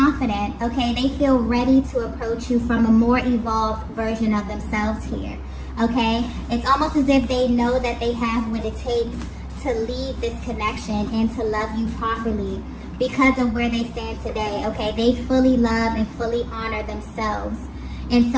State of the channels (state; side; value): identical; both; correlation 1.00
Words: okay? They feel ready to approach you from a more evolved version of themselves here, okay? It's almost as if they know that they have what it takes to lead this connection and to love you properly because of where they stand today, okay? They fully love and fully honor themselves. And